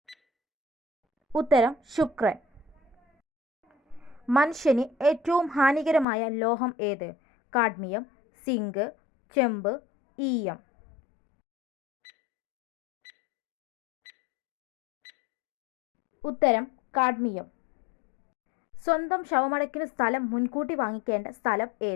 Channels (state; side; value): drops out; right; at 6.1 s